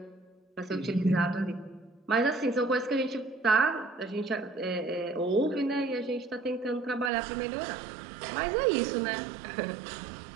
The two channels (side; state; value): left; drops out; at 7.1 s